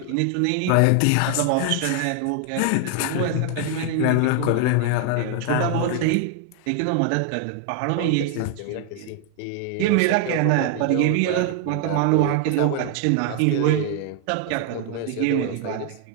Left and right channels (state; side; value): different; both; correlation 0.00